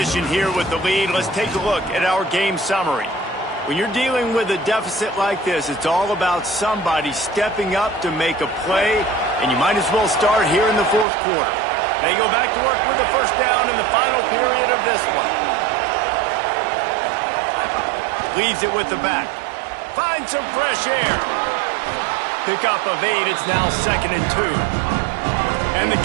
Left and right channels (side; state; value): left; drops out; at 11.1 s